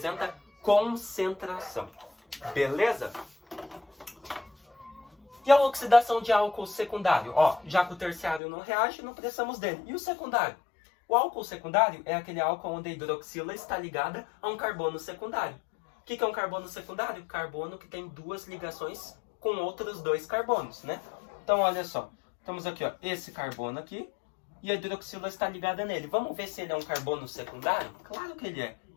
concentração. Beleza? E a oxidação de álcool secundário? Ó, já que o terciário não reage, não precisamos dele. E o secundário? O álcool secundário é aquele álcool onde a hidroxila está ligada a um carbono secundário. O que é um carbono secundário? Carbono que tem 2 ligações com outros 2 carbonos, né? Então, olha só. Temos aqui, ó, esse carbono aqui. E a hidroxila está ligada nele. Vamos ver se ele é um carbono secundário? Claro que ele é.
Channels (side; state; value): right; drops out; at 8.4 s